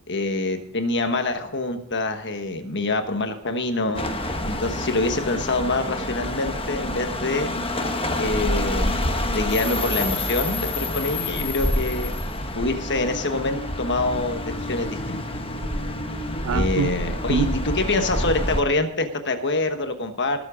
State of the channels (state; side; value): normal; both; correlation 0.14